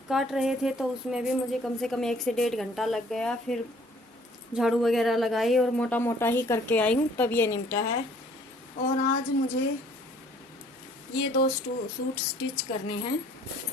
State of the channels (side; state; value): both; normal; correlation 0.58